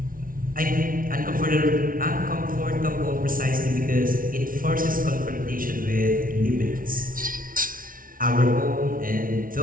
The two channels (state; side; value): late; left; 0.40 ms